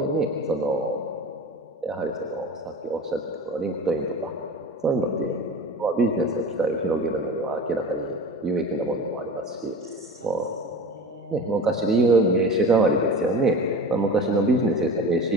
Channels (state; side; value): normal; both; correlation 0.33